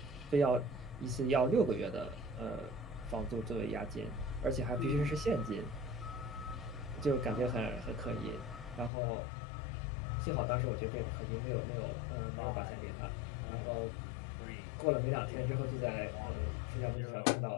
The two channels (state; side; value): drops out; right; at 8.9 s